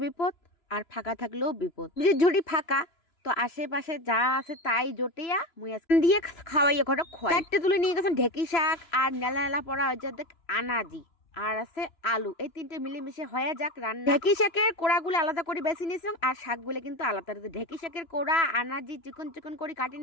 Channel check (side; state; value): right; late; 2.9 ms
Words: বিপদ, আর ফাঁকা থাকলেও বিপদ। সবজির ঝুড়ি ফাঁকা, তো আশেপাশে যা আছে তাই জটিয়া মুই আজকে দিয়ে খাওয়াইয়া ঘরে খোয়াই। চারটে তুলে নিয়ে গেছেন ঢেকি শাক আর নেলা নেলা পড়া হয়েছে দেখ আনাজি, আর আছে আলু। এই তিনটে মিলেমিশে হয়ে যাক রান্না। ঢেকি শাকের কোড়াগুলো আলাদা করে বেছে নিয়েছিলাম, আর শাকগুলো কিন্তু আলাদা। ঢেকি শাকের কোড়া আনাজি চিকন চিকন করে কাটি